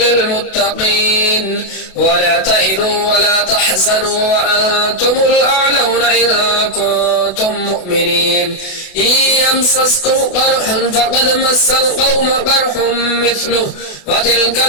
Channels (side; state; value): right; late; 28 ms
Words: ولا تهنوا ولا تحزنوا وأنتم الأعلون إن كنتم مؤمنين إن يمسسكم قرح فقد مس القوم قرح مثله وتلك